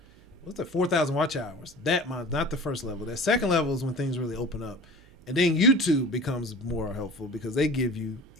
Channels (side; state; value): right; noise; hum, 26 dB below the sound